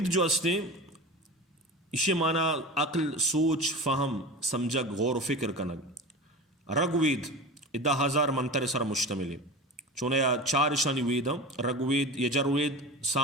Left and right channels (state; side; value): normal; both; correlation 0.31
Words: جو استے اسے مانا عقل سوچ فہم سمجھگ غور و فکر کنگ رگ وید 10,000 منتر سر مشتمل ہے چونیا 4 اشانی وید ہیں رگ وید یجر وید